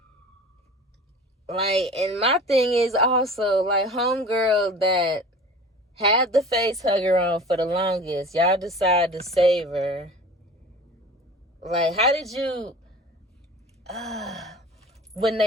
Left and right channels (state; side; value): normal; both; correlation 0.40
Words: Like, and my thing is also, like, homegirl that had the face hugger on for the longest, y'all decide to save her. Like, how did you... when